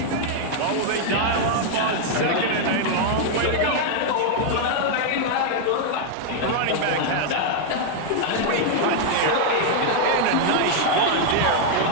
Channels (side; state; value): both; different; correlation 0.00